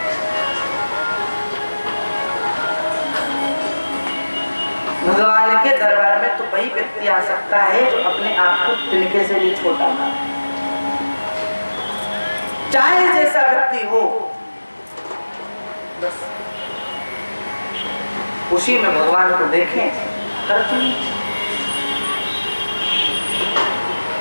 भगवान के दरबार में तो वही व्यक्ति आ सकता है जो अपने आप को तिनके से भी छोटा ना, चाहे जैसा व्यक्ति हो, बस उसी में भगवान को देखें।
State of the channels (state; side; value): inverted; both; correlation -1.00